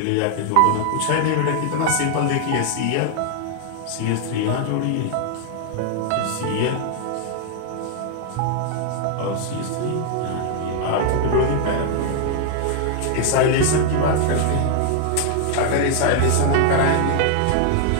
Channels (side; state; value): both; different; correlation 0.00